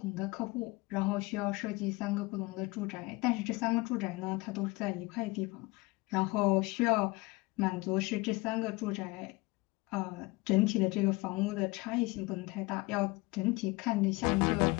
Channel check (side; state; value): right; quieter; 23.1 dB